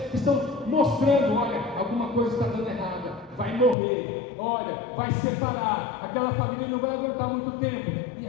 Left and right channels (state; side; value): drops out; right; at 3.8 s